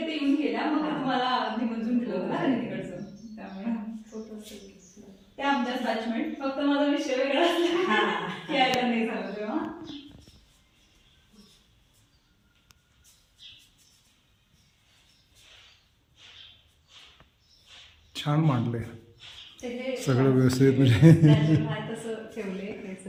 येऊन गेल्या मग तुम्हाला निमंत्रण दिलं होतं ना त्यांनी तिकडचं. त्यामुळे ते आमच्याच बॅचमेट फक्त माझा विषय वेगळा असला यायला नाही झालं तेव्हा. छान मांडलंय ते जे सगळं व्यवस्थित म्हणजे natural आहे तसं ठेवलंय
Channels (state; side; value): identical; both; correlation 1.00